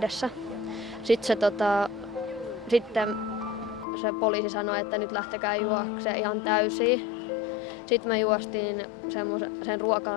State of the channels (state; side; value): drops out; right; at 3.9 s